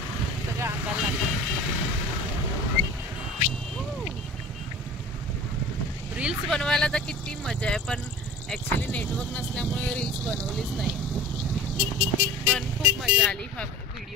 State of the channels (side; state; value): both; normal; correlation 0.40